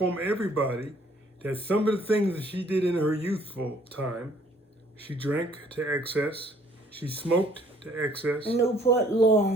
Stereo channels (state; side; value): normal; both; correlation 0.60